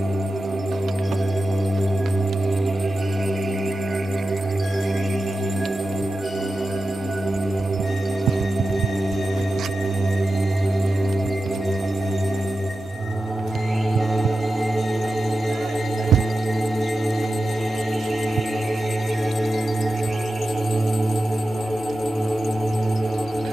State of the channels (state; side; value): normal; both; correlation 0.92